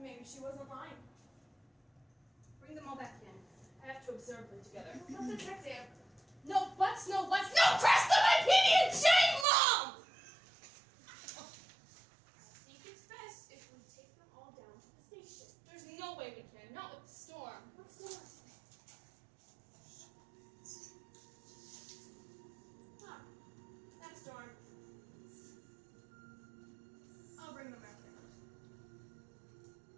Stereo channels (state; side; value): drops out; left; at 9.5 s